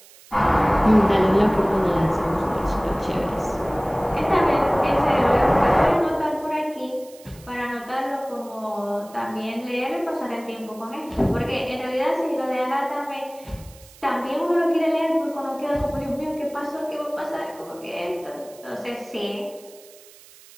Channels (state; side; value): noise; right; hiss, 23 dB below the sound